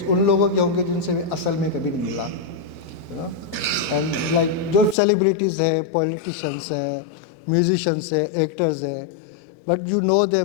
ان لوگوں کے ہوں گے جن سے میں اصل میں کبھی نہیں ملا. اینڈ لائک جو سیلیبریٹیز ہیں, پولیٹیشنس ہیں, میوزیشنس ہیں, ایکٹرز ہیں, but you know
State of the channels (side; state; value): right; drops out; at 5.0 s